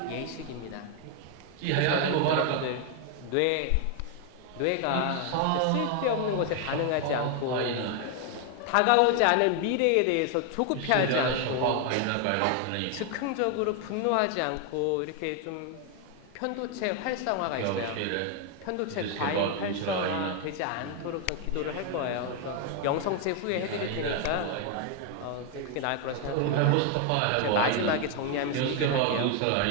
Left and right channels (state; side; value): different; both; correlation 0.01